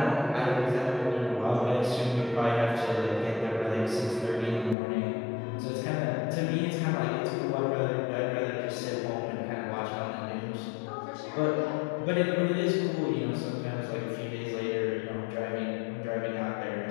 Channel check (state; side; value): drops out; right; at 4.8 s